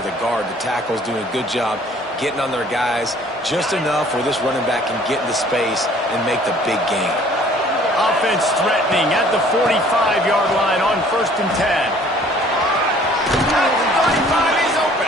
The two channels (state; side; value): normal; both; correlation 0.55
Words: the guard, the tackles doing a good job getting on their guys just enough where this running back can get into space and make the big gain. Offense threatening at the 45-yard line on 1st and 10. At the 35, he's